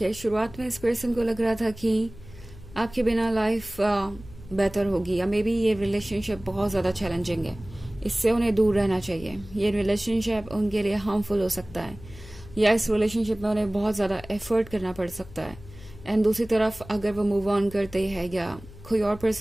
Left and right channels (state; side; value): noise; left; hum, 18 dB below the sound